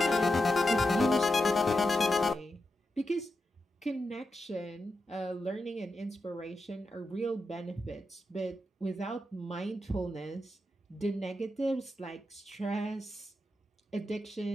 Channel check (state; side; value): normal; both; correlation 0.87